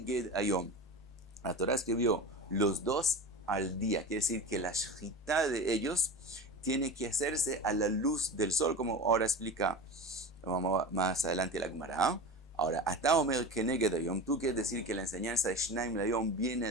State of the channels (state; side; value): normal; both; correlation 0.29